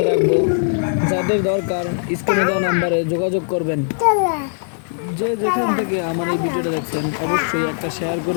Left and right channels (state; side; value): silent; right; digital silence